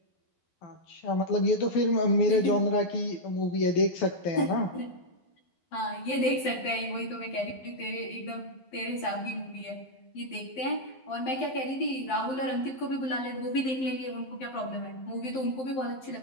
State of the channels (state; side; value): late; right; 12 ms